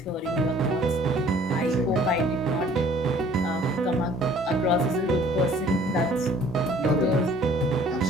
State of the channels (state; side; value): normal; both; correlation 0.55